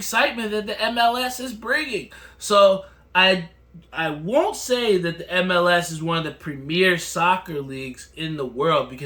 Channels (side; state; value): both; identical; correlation 1.00